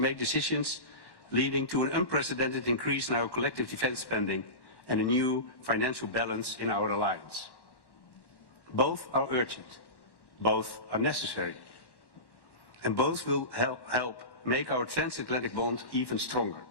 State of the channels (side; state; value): right; late; 1.1 ms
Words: decisions leading to an unprecedented increase in our collective defense spending and a new financial balance in our alliance. Both are urgent, both are necessary, and both will help make our transatlantic bond even stronger,